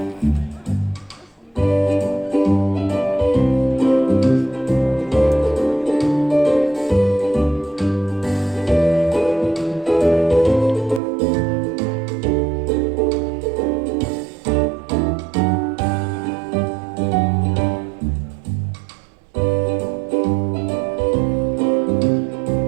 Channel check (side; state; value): left; drops out; at 11.0 s